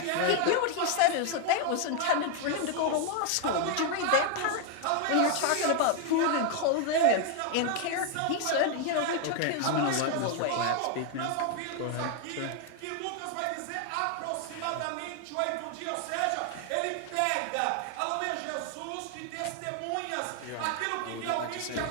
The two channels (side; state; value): both; different; correlation 0.00